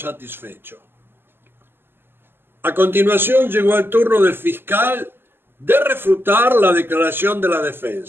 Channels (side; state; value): left; late; 0.10 ms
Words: A continuación llegó el turno del fiscal de refutar la declaración de la